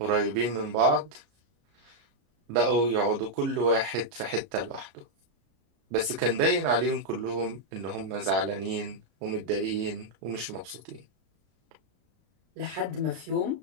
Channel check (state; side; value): late; left; 33 ms